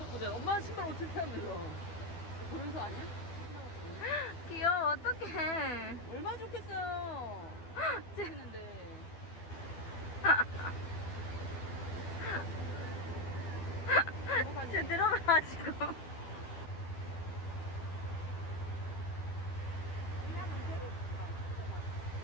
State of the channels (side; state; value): right; late; 12 ms